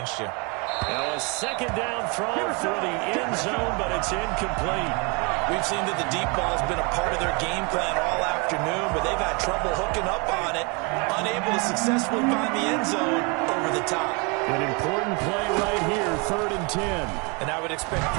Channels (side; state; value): left; quieter; 31.1 dB